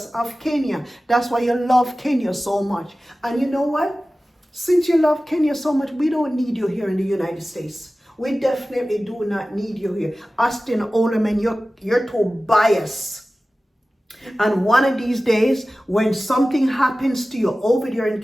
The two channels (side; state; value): both; normal; correlation 0.96